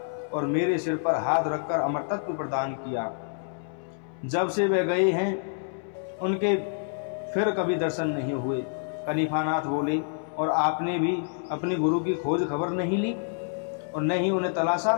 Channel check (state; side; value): silent; right; 60 dB below the other